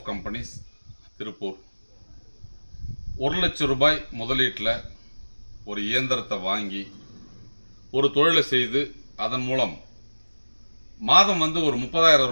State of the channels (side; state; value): both; inverted; correlation -1.00